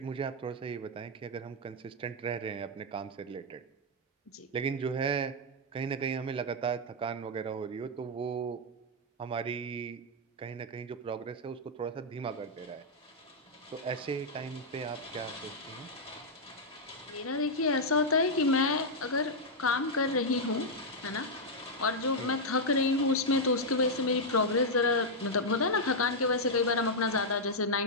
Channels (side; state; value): both; normal; correlation -0.03